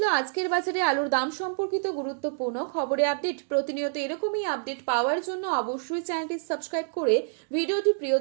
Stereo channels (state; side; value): silent; left; digital silence